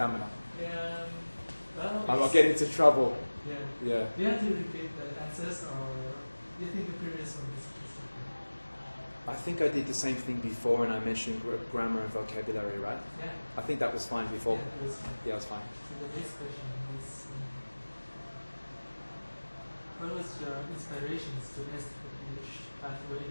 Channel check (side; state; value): both; inverted; correlation -1.00